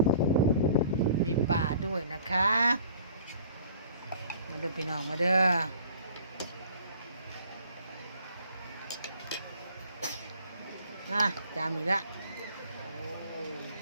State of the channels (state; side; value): inverted; both; correlation -0.52